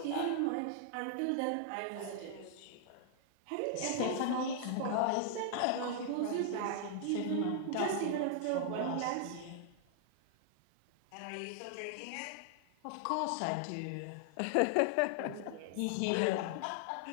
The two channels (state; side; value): different; both; correlation -0.01